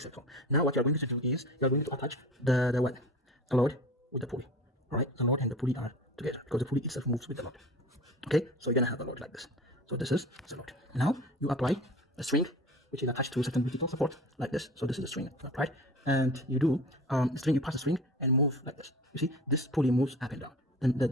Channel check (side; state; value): both; normal; correlation 0.37